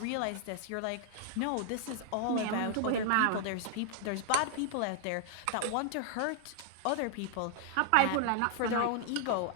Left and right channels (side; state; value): both; different; correlation 0.00